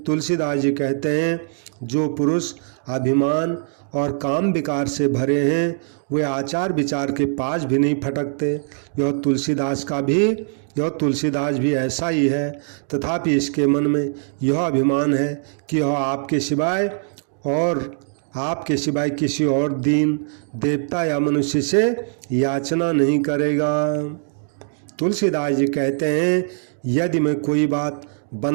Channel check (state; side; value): silent; left; 65 dB below the other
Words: तुलसीदास जी कहते हैं जो पुरुष अभिमान और काम विकार से भरे हैं वे आचार विचार के पास भी नहीं फटकते। यह तुलसीदास भी ऐसा ही है, तथापि इसके मन में यह अभिमान है कि यह आपके सिवाय किसी और दीन देवता या मनुष्य से याचना नहीं करेगा। तुलसीदास जी कहते हैं यदि मैं कोई बात